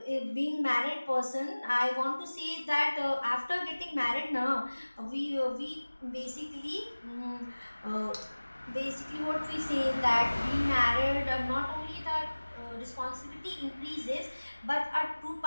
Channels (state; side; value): inverted; both; correlation -1.00